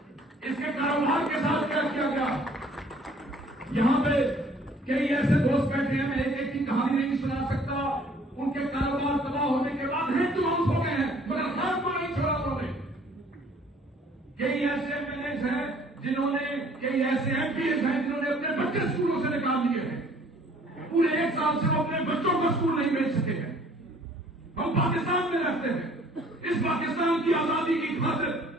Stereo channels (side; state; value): both; normal; correlation 0.56